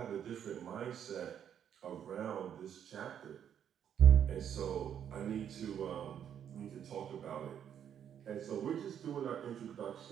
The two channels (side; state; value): left; quieter; 9.0 dB